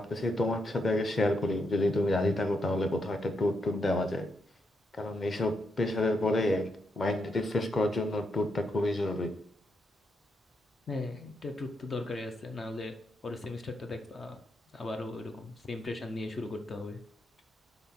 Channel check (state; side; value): normal; both; correlation 0.80